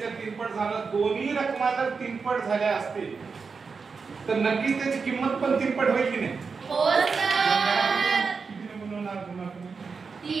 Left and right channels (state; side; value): quieter; left; 5.1 dB